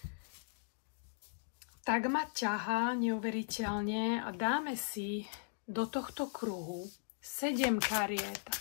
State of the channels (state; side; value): silent; right; digital silence